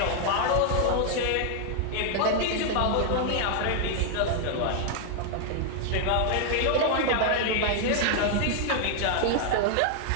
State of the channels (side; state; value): both; different; correlation 0.00